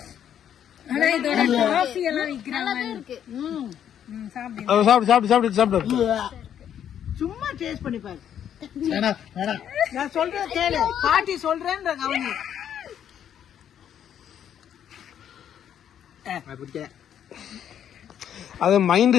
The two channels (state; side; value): quieter; right; 9.5 dB